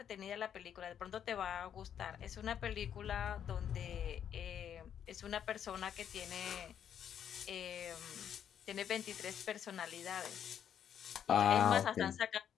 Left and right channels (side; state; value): right; quieter; 9.1 dB